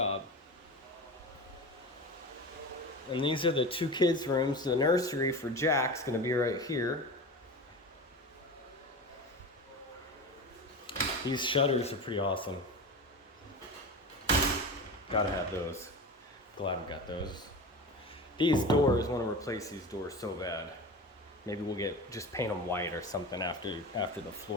And these are the two kids' rooms. The nursery for Jack's gonna be right here. These shutters are pretty awesome. Gotta have those. Glad we got those. These doors, want to replace these doors so bad. Maybe we'll just paint them white or something after the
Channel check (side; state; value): both; normal; correlation 0.28